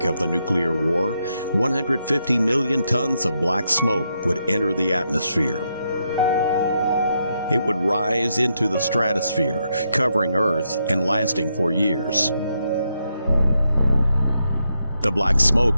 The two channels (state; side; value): inverted; both; correlation -0.81